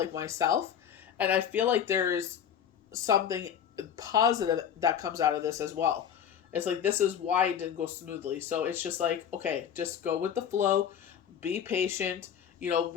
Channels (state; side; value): quieter; right; 8.7 dB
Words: myself, and I feel like there's something positive that comes out of this as well. It's like, this is why it didn't go smoothly. So it's just like, okay, just go with the flow, be patient.